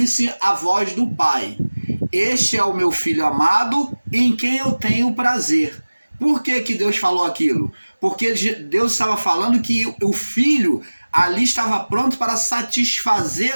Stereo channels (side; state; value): both; inverted; correlation -1.00